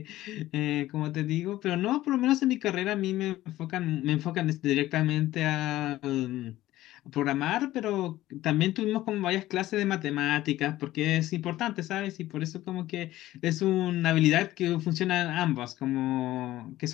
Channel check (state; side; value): quieter; right; 15.5 dB